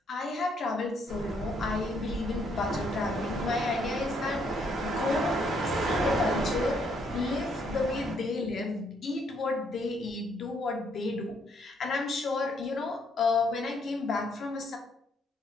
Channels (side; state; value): both; normal; correlation 0.70